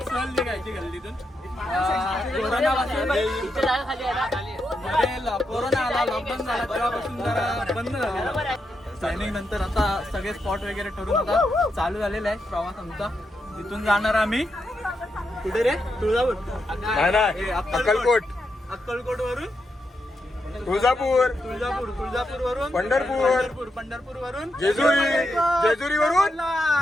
सहल निघायची गल्लीतून. कोरोना आला, लॉकडाऊन झाला, तेव्हापासून जरा बंद झालेलं. प्लॅनिंग नंतर आता सगळे स्पॉट वगैरे ठरून आता चालू झालेला आहे प्रवास आमचा. तिथून जाणार आम्ही कुठे रे? तुळजापूर, अक्कलकोट, अक्कलकोट वरून तुळजापूर वरून पंढरपूर वरून जेजुरी वरून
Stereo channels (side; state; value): both; normal; correlation 0.84